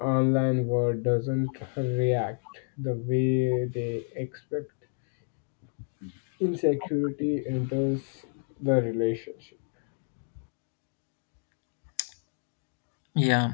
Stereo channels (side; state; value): right; silent; 58 dB below the other